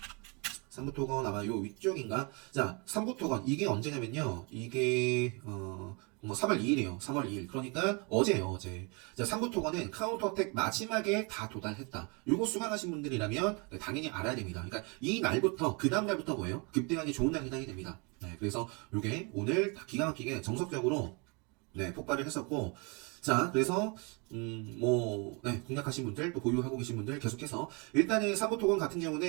3부 토건 아마 요 위쪽인가? 자, 3부 토건 이게 언제냐면요. 이게 뭐 3월 2일이에요. 3월 2일. 그러니까 어제예요, 어제. 자, 3부 토건은 카운터텍 마지막에 다 도달했다. 요거 수강하신 분들이라면 당연히 알아야 됩니다. 그러니까 이 날부터 그 다음 날부터 뭐예요? 급등하기 좋은 날이 해당이 됩니다. 네, 그래서 요게 오늘 기가 막히게 정석적으로 네, 폭발을 했었고 자, 그래서 네, 공략하신 분들 또 보유하고 계신 분들 계속해서 일단은 3부 토건 같은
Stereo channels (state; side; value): quieter; left; 31.4 dB